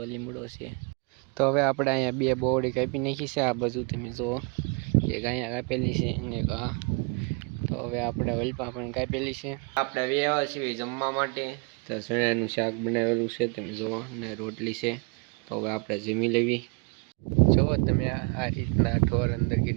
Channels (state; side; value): quieter; left; 32.2 dB